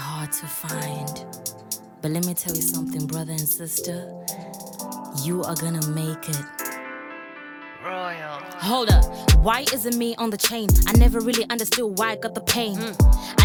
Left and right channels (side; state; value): both; identical; correlation 1.00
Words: to find. But let me tell you something, brother and sister, you are gonna make it. Royal. Hold up, why isn't me on the chain? I never really understood why I got the pain. I